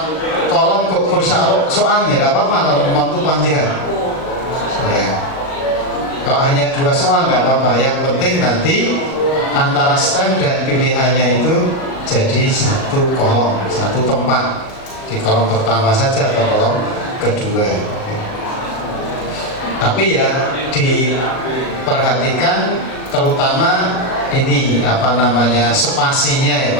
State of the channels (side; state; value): right; late; 38 ms